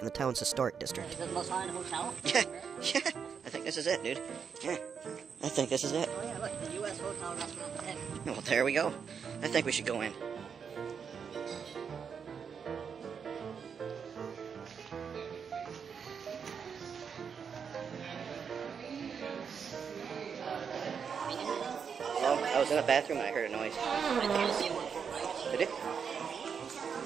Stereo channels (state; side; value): quieter; left; 6.7 dB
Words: the town's historic district. Is it the most haunted hotel? Yeah, I think this is it, dude. Yeah, I think this is it. Oh yeah, look, the U.S. hotel restaurant. Well, there we go. I think we should go in. Oh, I was in the bathroom and I heard a noise. Did it?